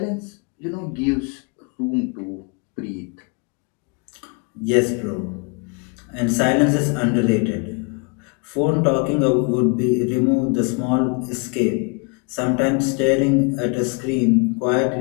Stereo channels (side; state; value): right; quieter; 34.1 dB